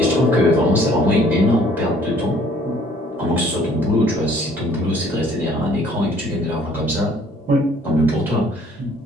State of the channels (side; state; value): both; normal; correlation 0.58